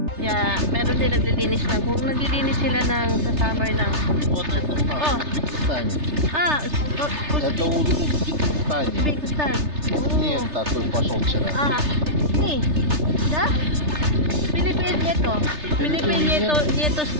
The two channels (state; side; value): late; left; 3.3 ms